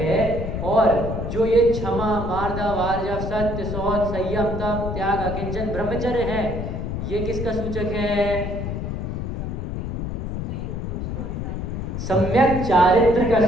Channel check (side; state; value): left; noise; rumble, 4 dB below the sound